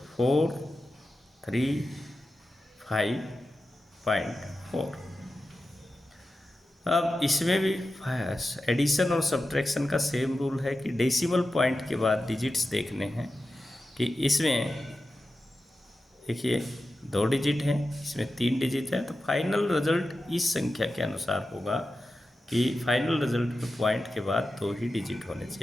435.4. अब इसमें भी एडिशन और सब्ट्रैक्शन का सेम रूल है कि डेसिमल पॉइंट के बाद डिजिट्स देखने हैं कि इसमें देखिए 2 डिजिट हैं, इसमें 3 डिजिट है. तो फाइनल रिजल्ट इस संख्या के अनुसार होगा कि फाइनल रिजल्ट में पॉइंट के बाद 2 ही डिजिट होने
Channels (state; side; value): normal; both; correlation 0.92